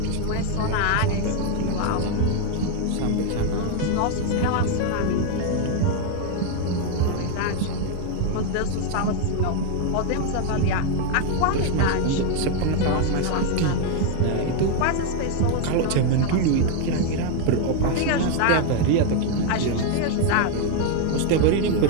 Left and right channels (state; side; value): different; both; correlation 0.01